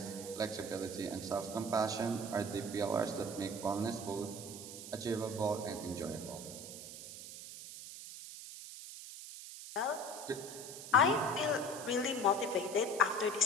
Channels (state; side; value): noise; right; hiss, 11 dB below the sound